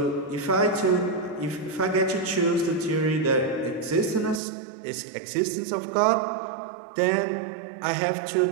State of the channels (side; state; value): left; drops out; at 4.4 s